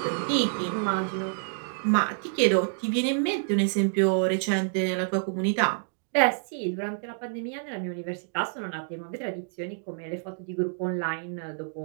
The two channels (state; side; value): silent; left; digital silence